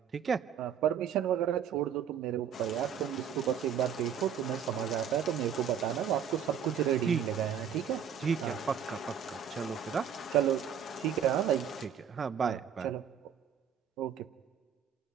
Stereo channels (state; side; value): quieter; left; 8.2 dB